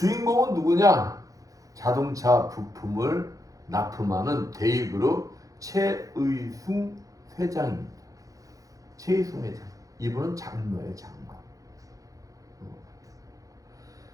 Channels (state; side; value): late; left; 0.17 ms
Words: 누구냐? 자동차 부품을 납품하는 대입그룹 최의순 회장입니다. 최의순 회장. 이분은 장로예요, 장로.